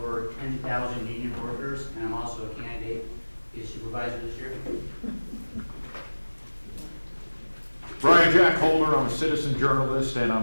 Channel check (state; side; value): inverted; both; correlation -1.00